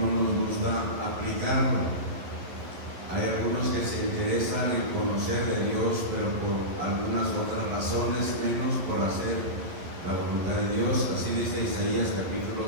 nos gusta aplicarlo. Hay algunos que se interesan en conocer de Dios, pero por algunas otras razones, menos por hacer la voluntad de Dios. Así dice Isaías capítulo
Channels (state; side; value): late; left; 11 ms